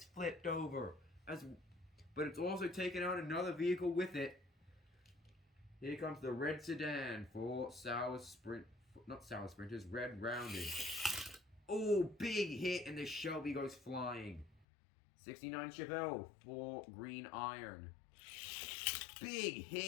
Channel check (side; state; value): right; drops out; at 14.7 s